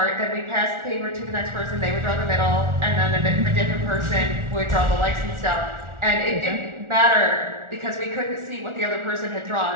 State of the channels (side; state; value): left; late; 1.4 ms